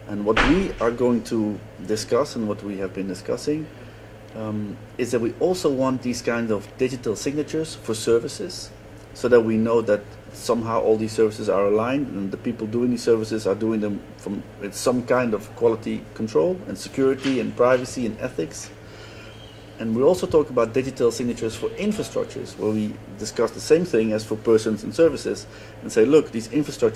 And what we are going to discuss, and what we have been discussing, is that we also want these kinds of digital signatures for services, so that we know that somehow all these services are aligned, and the people doing these services are doing them with some kind of quality control and security and privacy and ethics. And we also talk about digital signatures for infrastructures, where we discuss the same thing as for persons and services, and say, look, these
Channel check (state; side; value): identical; both; correlation 1.00